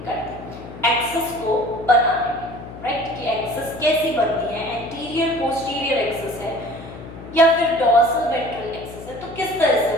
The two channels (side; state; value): left; noise; hum, 14 dB below the sound